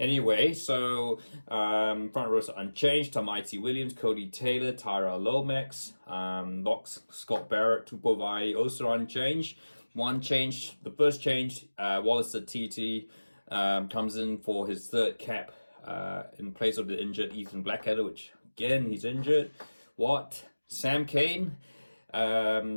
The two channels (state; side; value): inverted; both; correlation -1.00